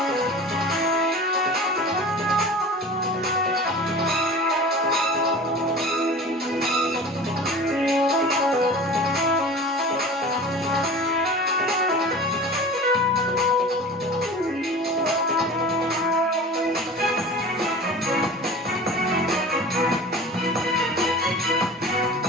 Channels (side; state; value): both; normal; correlation 0.37